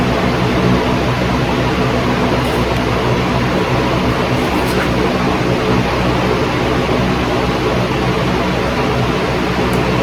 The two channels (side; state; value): both; identical; correlation 1.00